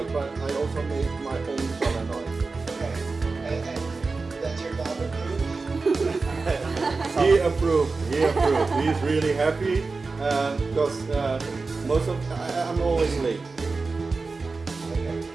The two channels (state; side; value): quieter; left; 4.0 dB